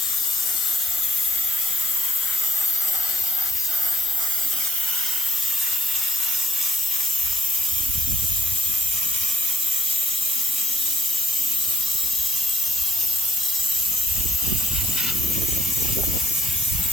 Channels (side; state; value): both; normal; correlation 0.76